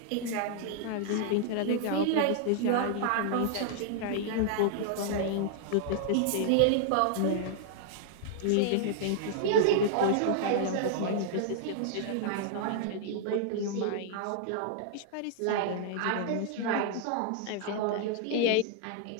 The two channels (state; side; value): different; both; correlation -0.01